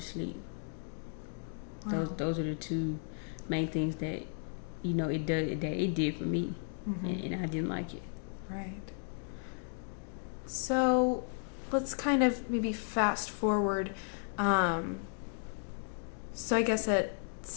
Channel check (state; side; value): silent; right; 55 dB below the other